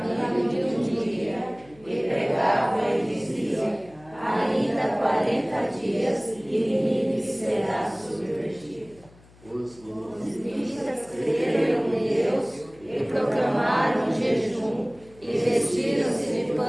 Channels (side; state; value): left; noise; hum, 26 dB below the sound